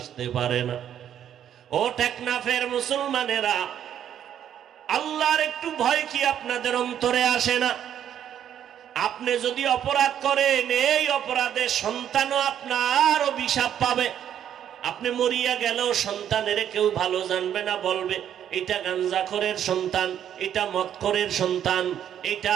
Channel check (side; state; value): left; quieter; 9.9 dB